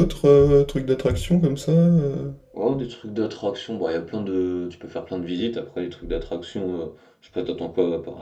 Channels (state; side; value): identical; both; correlation 1.00